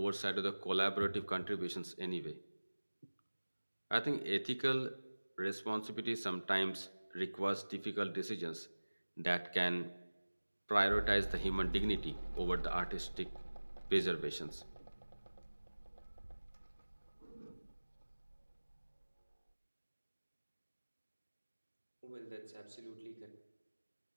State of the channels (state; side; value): inverted; both; correlation -1.00